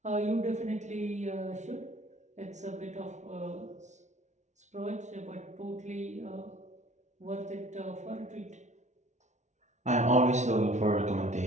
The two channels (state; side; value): late; left; 0.34 ms